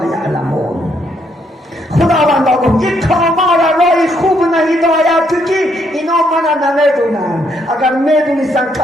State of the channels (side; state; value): both; normal; correlation 0.73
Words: یعلمون. خداوندا گفت این قوما را راه خوب هدایت تو که اینا من نمیدونن. اگر میدونستن